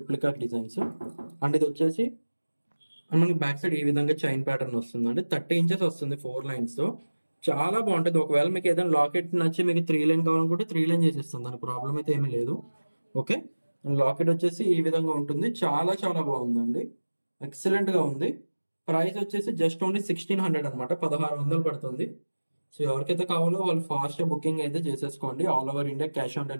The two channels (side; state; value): both; inverted; correlation -1.00